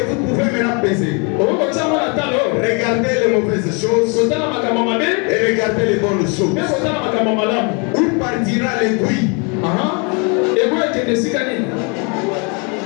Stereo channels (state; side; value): quieter; right; 33.7 dB